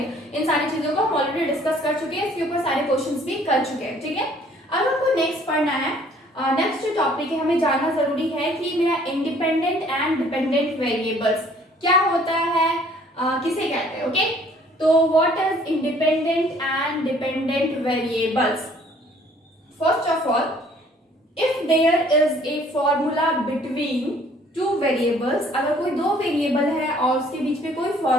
इन सारी चीजों को हम ऑलरेडी डिस्कस कर चुके हैं. इसके ऊपर सारे क्वेश्चंस भी कर चुके हैं. ठीक है, अब हमको नेक्स्ट पढ़ना है. नेक्स्ट जो टॉपिक है हमें जानना जरूरी है कि मेरा इंडिपेंडेंट एंड डिपेंडेंट वेरिएबल्स क्या होता है, किसे कहते हैं. ओके, तो what is independent and dependent variables. First of all, if there is a formula between two variables, अगर कोई दो वेरिएबल है और उसके बीच में कोई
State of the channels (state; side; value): normal; both; correlation 0.58